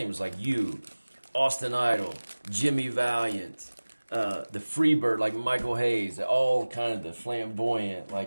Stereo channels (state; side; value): inverted; both; correlation -1.00